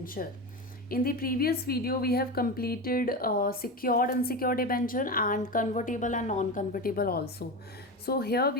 In the previous video, we have completed secured unsecured debenture and convertible and non-convertible also. So here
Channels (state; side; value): normal; both; correlation 0.22